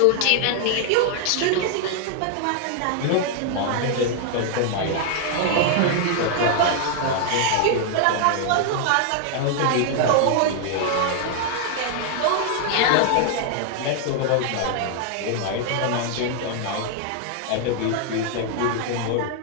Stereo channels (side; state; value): both; different; correlation 0.00